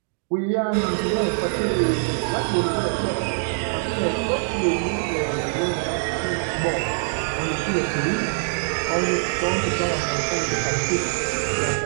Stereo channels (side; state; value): left; silent; digital silence